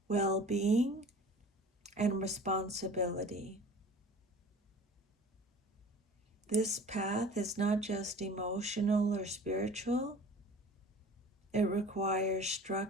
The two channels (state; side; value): normal; both; correlation 0.43